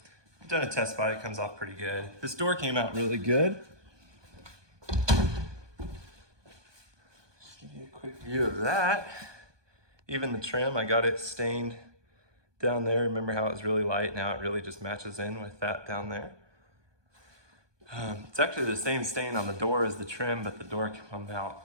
I've done a test spot, it comes off pretty good. This door came out really good. Just give you a quick view of that. Even the trim, I got it stained down there. Remember how it was really light? Now it really just matches in with that down there. It's actually the same stain on the door as the trim, but the door came out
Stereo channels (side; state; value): left; late; 1.2 ms